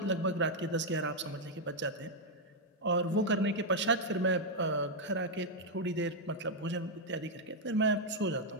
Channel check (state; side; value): normal; both; correlation -0.02